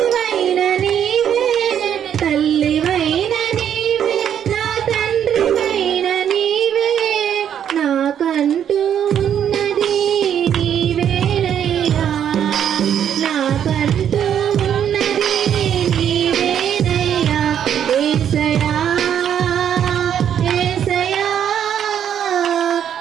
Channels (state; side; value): quieter; left; 9.2 dB